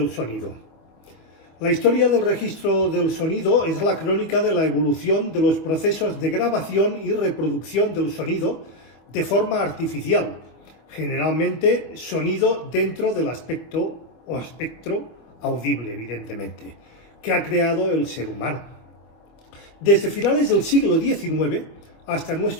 sonido. La historia del registro del sonido es la crónica de la evolución de los procesos de grabación y reproducción del sonido de forma artificial, generalmente sonido dentro del aspecto o espectro audible, evidentemente, que ha creado el ser humano. Desde finales del siglo XIX hasta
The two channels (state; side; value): late; right; 25 ms